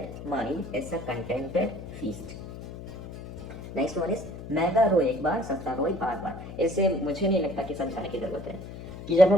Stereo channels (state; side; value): noise; left; hum, 11 dB below the sound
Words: mind is a contented feast. Next one is, महंगा रोए एक बार सस्ता रोए बार बार। इससे मुझे नहीं लगता कि समझाने की जरूरत है कि जब